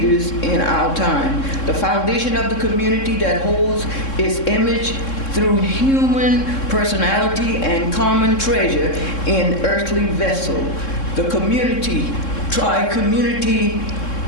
in our time. The foundation of the community that holds its image through human personality and common treasure in earthly vessel. The community, Tri-Community,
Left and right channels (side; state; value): right; late; 3.7 ms